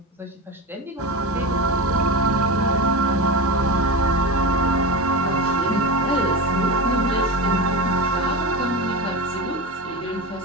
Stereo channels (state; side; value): normal; both; correlation 0.21